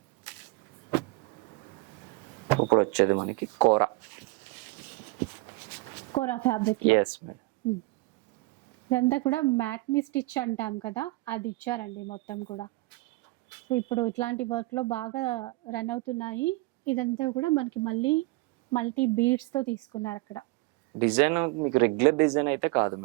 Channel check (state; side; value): quieter; left; 22.7 dB